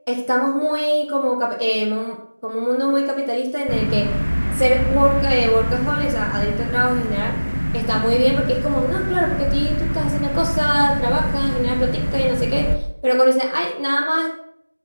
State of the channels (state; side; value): inverted; both; correlation -1.00